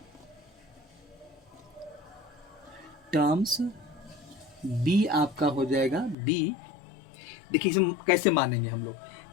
be आपका हो जाएगा बी। देखिए इसे कैसे मानेंगे हम लोग,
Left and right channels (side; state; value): right; drops out; at 6.2 s